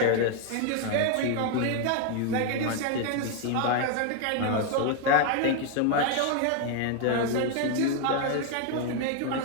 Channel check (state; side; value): different; both; correlation 0.00